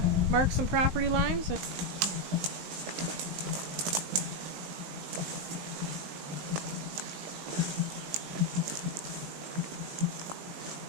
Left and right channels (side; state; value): left; late; 19 ms